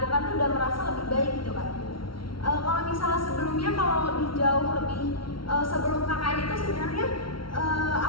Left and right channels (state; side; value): late; right; 0.74 ms